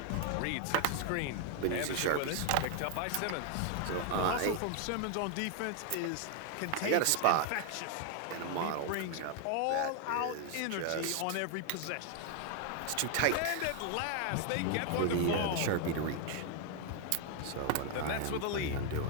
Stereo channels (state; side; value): different; both; correlation 0.00